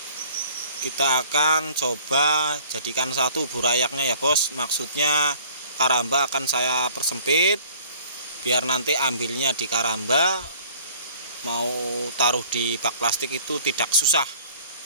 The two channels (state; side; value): inverted; both; correlation -0.52